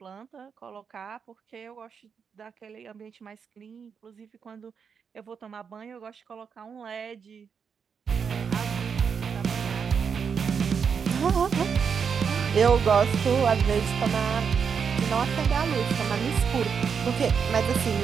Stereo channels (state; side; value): quieter; left; 6.5 dB